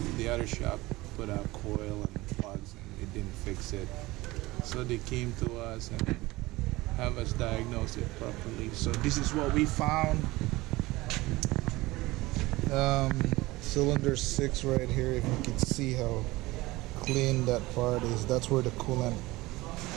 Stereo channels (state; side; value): quieter; left; 20.0 dB